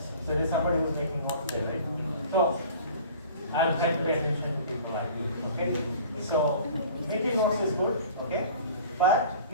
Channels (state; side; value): inverted; both; correlation -0.45